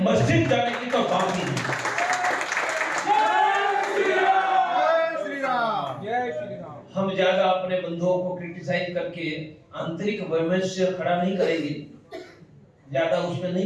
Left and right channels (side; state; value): both; identical; correlation 1.00